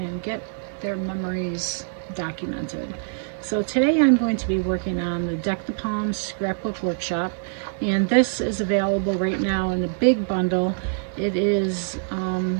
get their memories documented. So today I'm going to be working on the Deck the Palms scrapbook workshop, and this is available right now in a big bundle. It is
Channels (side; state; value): left; silent; digital silence